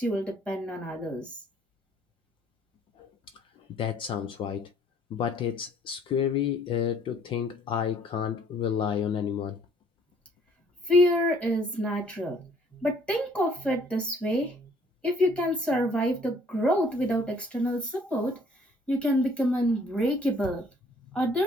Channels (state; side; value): normal; both; correlation 0.60